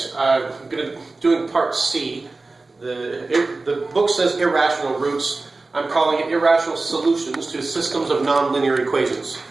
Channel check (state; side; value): quieter; left; 3.5 dB